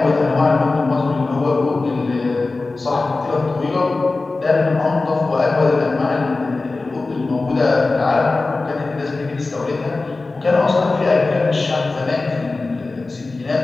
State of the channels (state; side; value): quieter; right; 3.5 dB